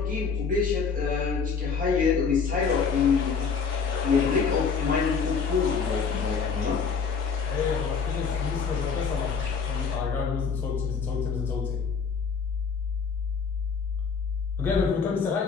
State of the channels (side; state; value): right; quieter; 5.7 dB